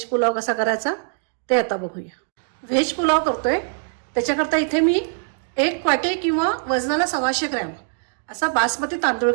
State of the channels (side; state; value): left; silent; digital silence